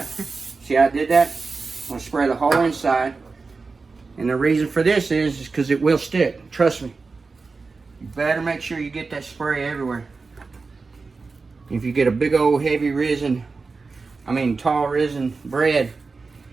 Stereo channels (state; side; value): quieter; left; 4.2 dB